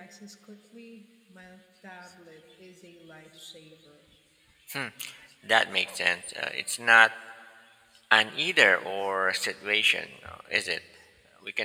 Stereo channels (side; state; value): both; identical; correlation 1.00